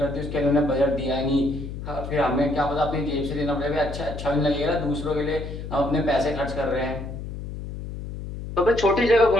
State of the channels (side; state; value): left; noise; hum, 8 dB below the sound